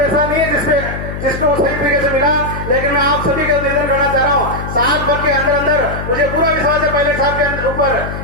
नहीं है जिसको सही तरीके से मिला। लेकिन मैं आप सभी का निवेदन करना चाह रहा हूँ, साल भर के अंदर अंदर मुझे पूरा विश्वास है पायलट साहब के ऊपर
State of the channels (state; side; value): noise; left; hum, 7 dB below the sound